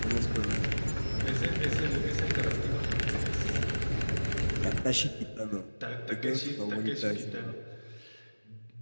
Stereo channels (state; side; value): inverted; both; correlation -1.00